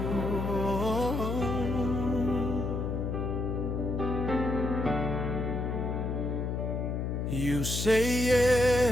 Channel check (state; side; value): noise; left; hum, 1 dB below the sound